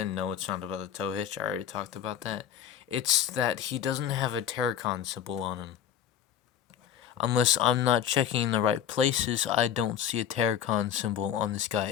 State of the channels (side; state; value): right; quieter; 9.6 dB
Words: no, it's not about the tow hitch. I already talked about that. It's that he doesn't have a Terracon symbol on him. Unless I'm not checking the right places, I don't see a Terracon symbol on this